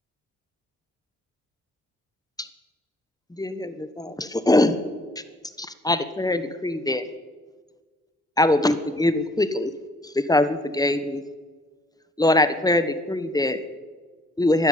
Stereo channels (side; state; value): both; normal; correlation 0.60